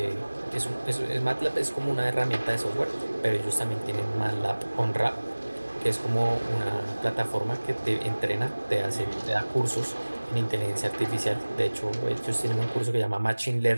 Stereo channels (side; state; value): both; inverted; correlation -1.00